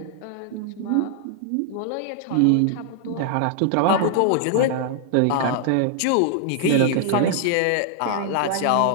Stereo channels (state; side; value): different; both; correlation -0.01